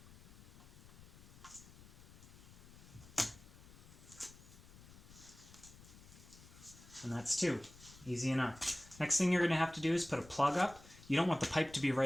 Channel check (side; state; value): left; noise; rumble, 20 dB below the sound